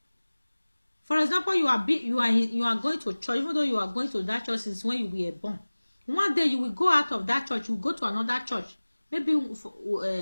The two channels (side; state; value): both; inverted; correlation -1.00